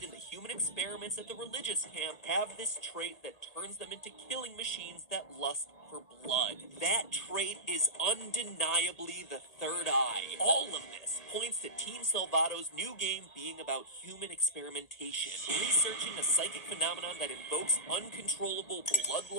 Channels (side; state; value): right; late; 1.8 ms